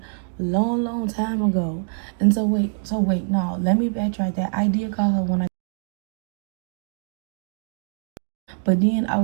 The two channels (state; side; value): silent; left; digital silence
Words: long time ago. And so wait, no, let me backtrack that. I did call her when I, but then I